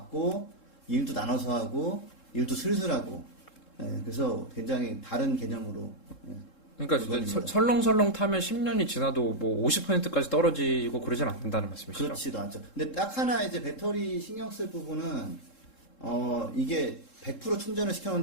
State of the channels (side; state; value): right; late; 3.7 ms